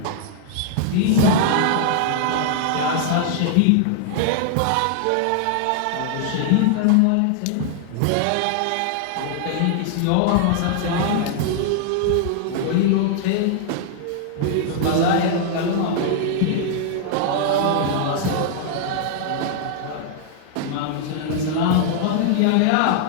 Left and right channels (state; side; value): different; both; correlation -0.01